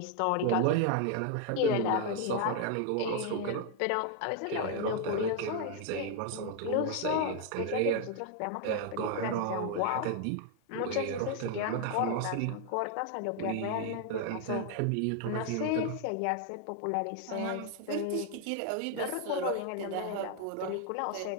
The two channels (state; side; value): different; both; correlation 0.00